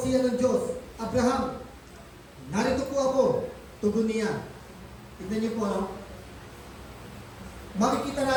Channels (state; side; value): identical; both; correlation 1.00